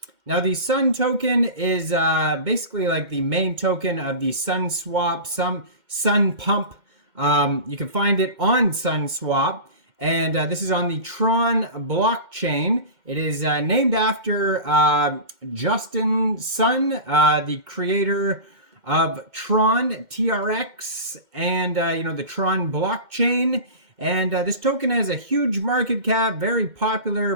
Now the Sun token is basically like the main token of the Sunswap, Sunpump. You can find it on Sunswap, and this is on the Tron blockchain. It is named after Justin Sun, the creator of Tron, TRX, and the Tron blockchain. And this token has a huge market cap, very popular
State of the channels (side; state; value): left; late; 2.1 ms